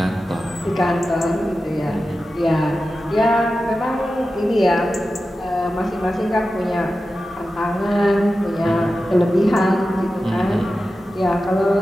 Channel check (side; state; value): both; normal; correlation 0.93